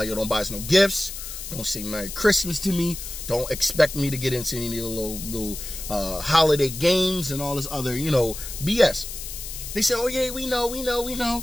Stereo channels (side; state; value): left; noise; hiss, 9 dB below the sound